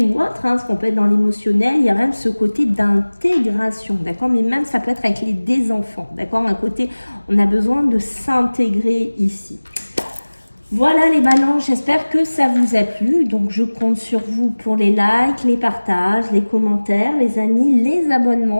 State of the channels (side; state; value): both; inverted; correlation -1.00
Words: ou autres, hein, ce qu'on peut être dans l'émotionnel, il y a même ce côté d'intégration, d'accord? Mais même ça peut être avec des enfants, d'accord? Un côté, on a besoin de s'intégrer ici. Voilà les balances, j'espère que ça vous a plu. Donc je compte sur vous pour les likes, les partages, les commentaires, les amis, les